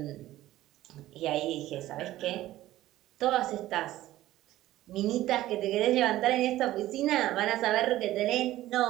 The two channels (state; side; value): quieter; left; 15.1 dB